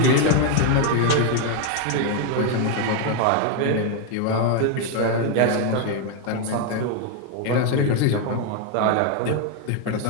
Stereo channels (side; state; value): both; different; correlation 0.01